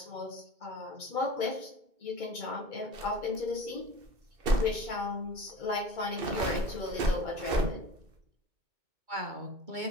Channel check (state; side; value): late; left; 2.6 ms